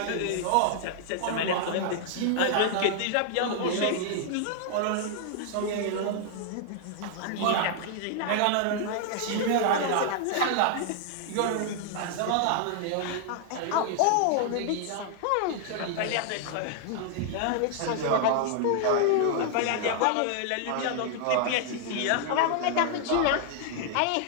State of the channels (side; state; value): both; different; correlation -0.01